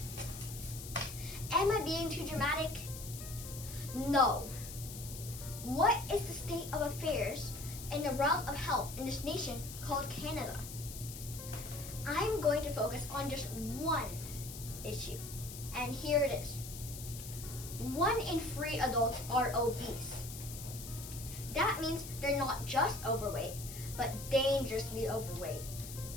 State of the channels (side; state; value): left; noise; hiss, 11 dB below the sound